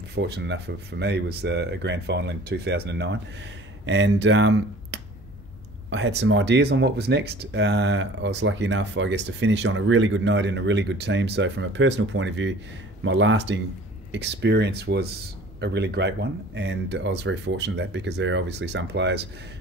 fortunate enough for me, was a grand final in 2009. And I had some ideas on what was next. I was lucky enough, I guess, to finish on a really good note in a really good team. So from a personal point of view, my lasting experience was a really great one, and I was very fortunate that, because there are obviously some players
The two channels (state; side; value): normal; both; correlation 0.47